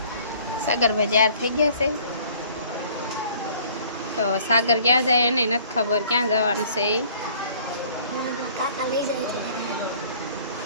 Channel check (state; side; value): inverted; both; correlation -0.55